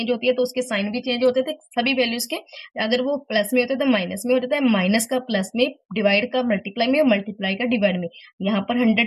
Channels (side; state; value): both; identical; correlation 1.00